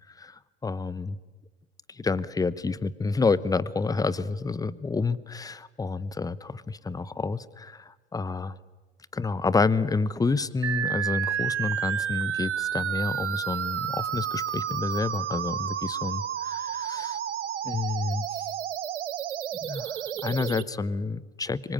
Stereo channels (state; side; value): normal; both; correlation 0.60